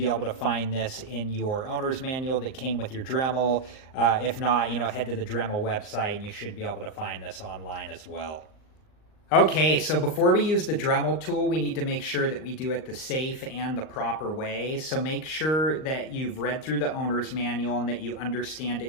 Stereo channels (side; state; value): right; late; 38 ms